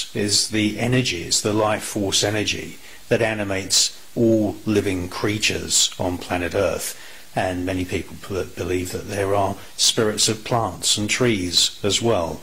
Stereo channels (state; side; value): identical; both; correlation 1.00